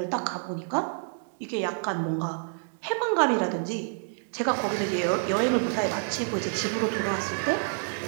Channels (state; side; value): silent; left; digital silence